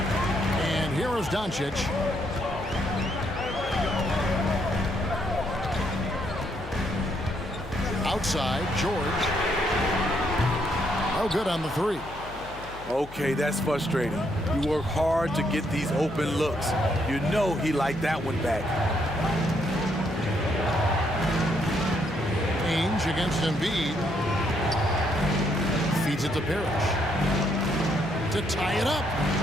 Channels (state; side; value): noise; left; hum, 16 dB below the sound